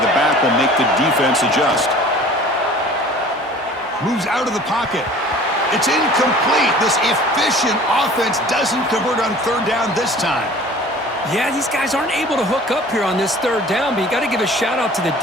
back will make the defense adjust. Moves out of the pocket. It's incomplete. This efficient offense doesn't convert on third down this time. Yeah, these guys aren't able to hook up here on this third down, but you got to give a shout out to the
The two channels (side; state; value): both; normal; correlation 0.46